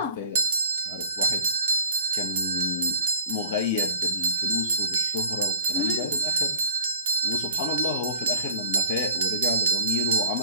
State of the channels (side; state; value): both; inverted; correlation -0.49